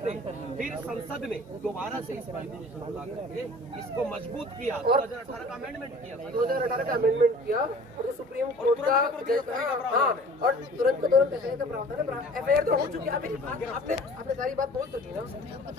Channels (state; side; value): normal; both; correlation 0.46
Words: थे। फिर संसद ने दोबारा से इस इसको मजबूत किया, 2018 का अमेंडमेंट किया, 2018 का अमेंडमेंट किया, और सुप्रीम कोर्ट का और तुरंत ऐसे का प्रावधान है। एफआईआर तो हो चुकी है, आपने सारी बात बोल चुकी ना,